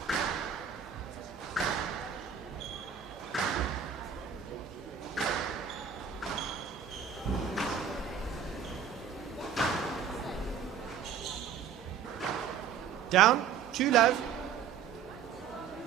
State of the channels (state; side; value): quieter; left; 7.6 dB